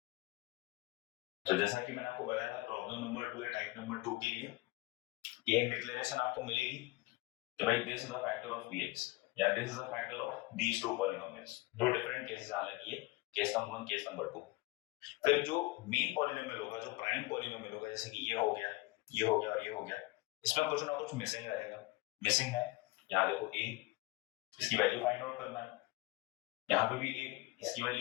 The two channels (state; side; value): quieter; right; 21.1 dB